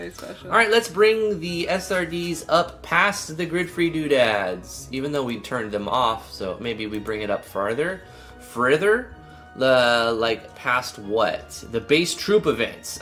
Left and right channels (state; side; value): identical; both; correlation 1.00